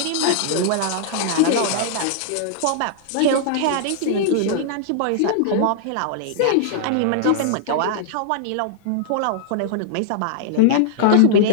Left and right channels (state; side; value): different; both; correlation -0.01